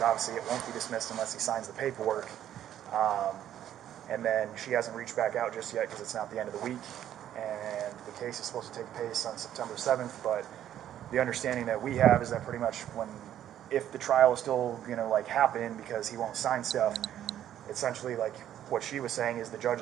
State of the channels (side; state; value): left; quieter; 11.2 dB